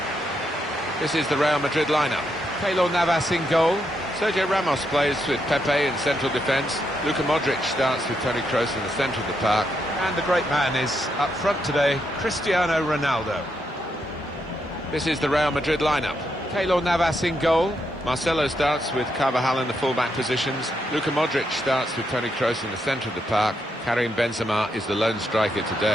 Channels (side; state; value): both; normal; correlation 0.80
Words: This is the Real Madrid lineup. Keylor Navas in goal. Sergio Ramos plays with Pepe in central defence. Luka Modric starts with Toni Kroos in the centre of the park. And the great man is up front today, Cristiano Ronaldo. This is the Real Madrid lineup. Keylor Navas in goal. Marcelo starts with Carvajal in the full-back positions. Luka Modric starts with Toni Kroos in the centre of the park. Karim Benzema is the lone striker